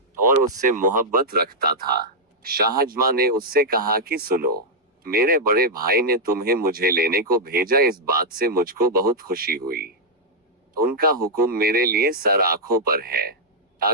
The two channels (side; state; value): both; normal; correlation -0.05